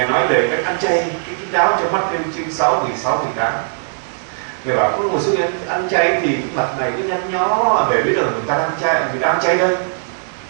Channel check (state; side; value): silent; left; digital silence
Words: nói về cách ăn chay, cái kín đáo cho mắt trên chương 6, 16, 18. Ngài bảo có một số người ăn chay thì mặt này cứ nhăn nhó để biết là người ta ăn chay đây.